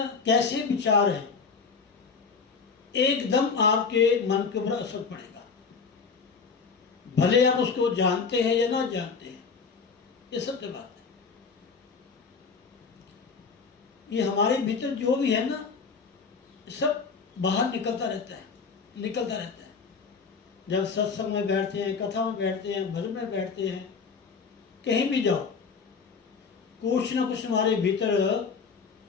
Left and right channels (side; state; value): right; quieter; 5.3 dB